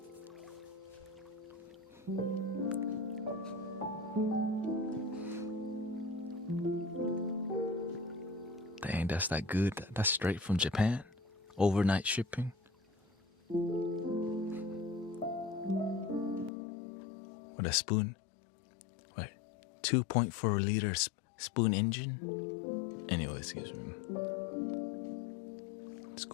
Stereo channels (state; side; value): drops out; right; at 16.5 s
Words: Dang, that's that good. That's straight from Japan. Overnight shipping. With a spoon. Wait, 2.4 liter spoon engine? Anyways, it's